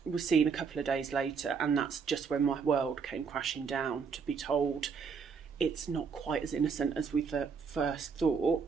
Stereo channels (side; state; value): left; quieter; 5.8 dB